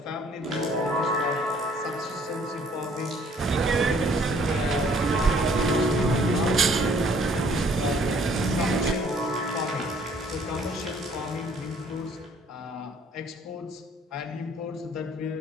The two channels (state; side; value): normal; both; correlation 0.60